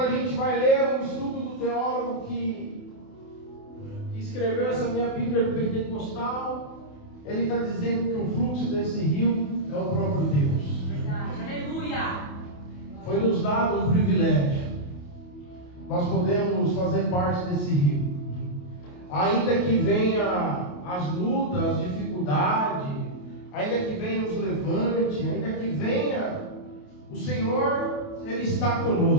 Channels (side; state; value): right; late; 28 ms